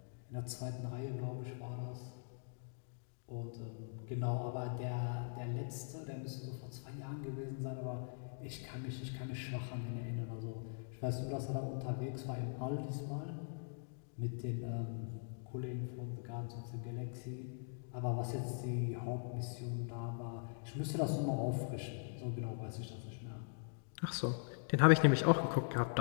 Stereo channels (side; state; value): right; silent; digital silence